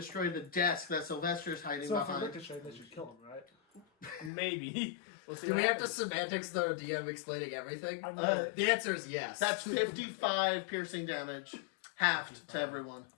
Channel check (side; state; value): right; drops out; at 4.3 s